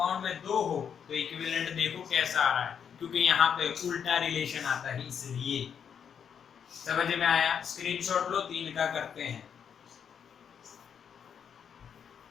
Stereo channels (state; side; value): quieter; right; 7.6 dB